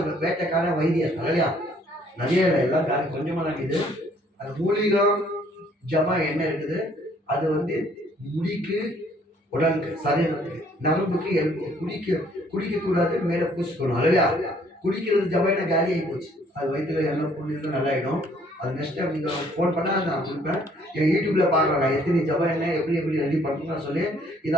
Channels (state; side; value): normal; both; correlation 0.62